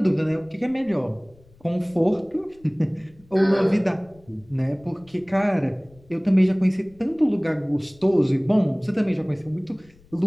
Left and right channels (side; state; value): left; noise; rumble, 28 dB below the sound